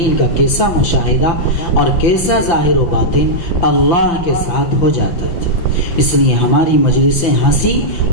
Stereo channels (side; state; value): right; late; 6.0 ms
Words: کا کیسا مشاہدہ اور کیسا ظاہر و باطن اللہ کے ساتھ ہو جاتا تھا۔ اس لیے ہماری مجلسیں ہنسی